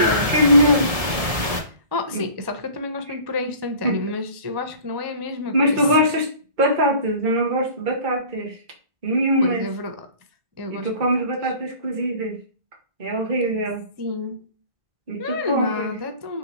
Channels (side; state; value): left; late; 1.7 ms